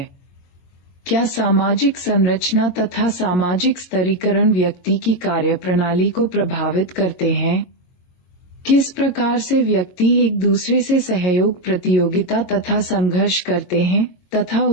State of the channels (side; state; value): right; late; 22 ms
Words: क्या सामाजिक संरचना तथा सामाजिक स्तरीकरण व्यक्ति की कार्यप्रणाली को प्रभावित करते हैं? किस प्रकार से व्यक्ति एक दूसरे से सहयोग, प्रतियोगिता तथा संघर्ष करते हैं तथा